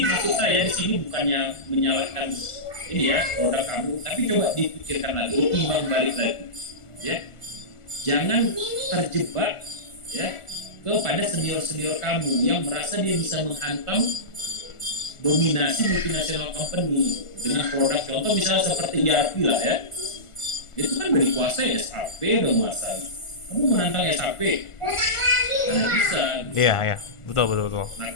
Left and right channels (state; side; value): late; right; 1.4 ms